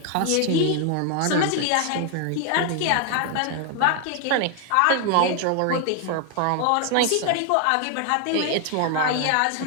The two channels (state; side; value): different; both; correlation 0.00